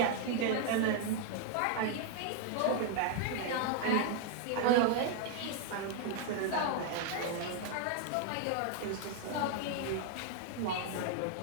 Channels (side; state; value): both; different; correlation 0.00